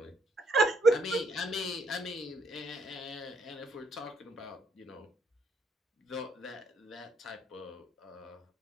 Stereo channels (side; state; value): both; normal; correlation 0.70